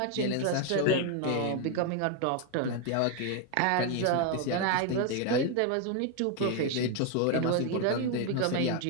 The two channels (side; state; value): both; different; correlation 0.01